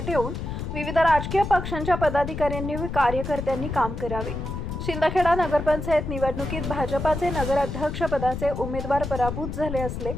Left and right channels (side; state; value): left; noise; rumble, 5 dB below the sound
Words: ठेवून विविध राजकीय पक्षांच्या पदाधिकाऱ्यांनी व कार्यकर्त्यांनी काम करावे। शिंदखेडा नगरपंचायत निवडणुकीत भाजपाचे नगराध्यक्ष पदाचे उमेदवार पराभूत झाले असले